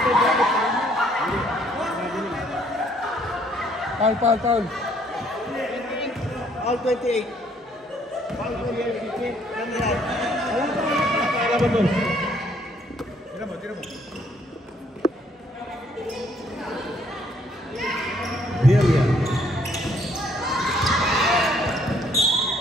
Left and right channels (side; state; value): both; normal; correlation 0.65